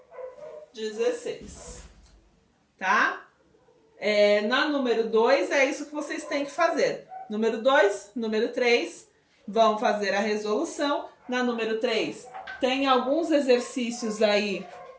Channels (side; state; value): both; identical; correlation 1.00